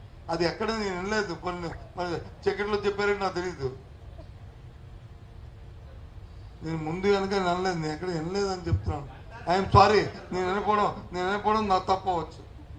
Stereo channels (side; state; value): both; identical; correlation 1.00